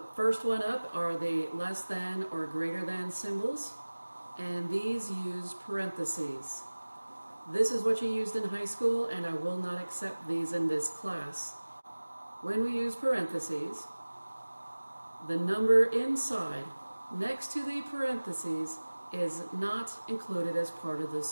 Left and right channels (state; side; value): inverted; both; correlation -1.00